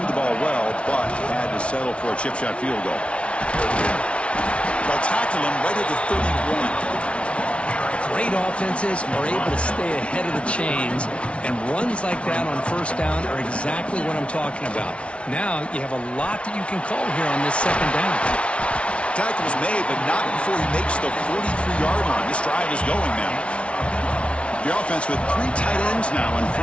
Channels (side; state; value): right; late; 0.061 ms